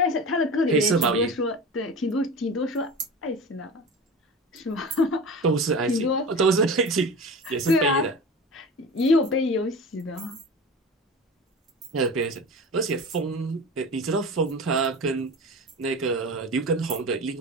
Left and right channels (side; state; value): both; normal; correlation 0.31